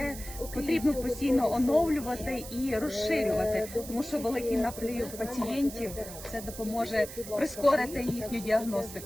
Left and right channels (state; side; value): noise; right; hiss, 12 dB below the sound